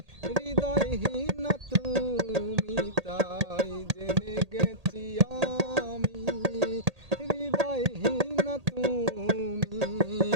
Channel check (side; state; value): left; late; 1.8 ms